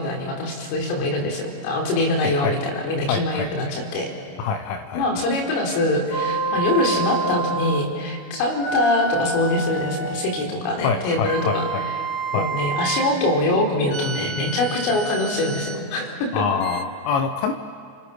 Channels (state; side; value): late; right; 29 ms